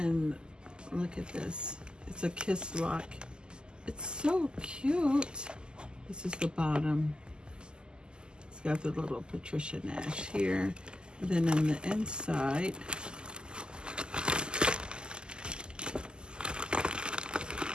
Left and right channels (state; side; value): late; left; 0.047 ms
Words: look at this. It's a kiss lock. It's so cute. This is the bottom. It's got the little Patricia Nash here. And then on the inside,